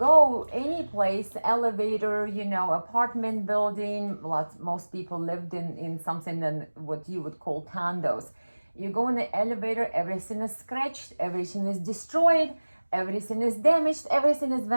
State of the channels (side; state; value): both; inverted; correlation -1.00